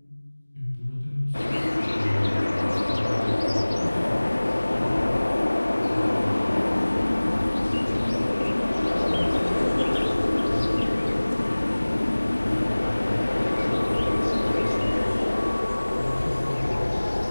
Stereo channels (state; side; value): inverted; both; correlation -1.00